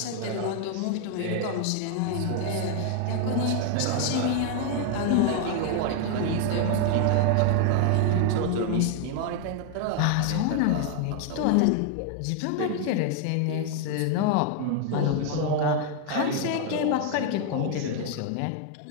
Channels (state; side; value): different; both; correlation 0.00